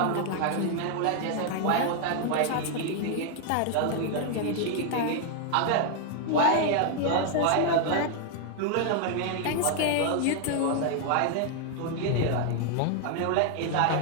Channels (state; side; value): different; both; correlation 0.00